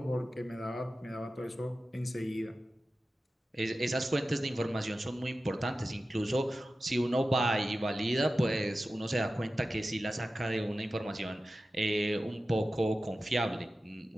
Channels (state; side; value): normal; both; correlation 0.94